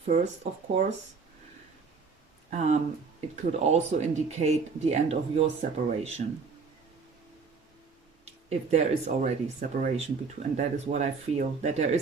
first, of course. It could also indicate the end of your separation. If there is already separation between, and that is what I feel, that there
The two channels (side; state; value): left; quieter; 5.0 dB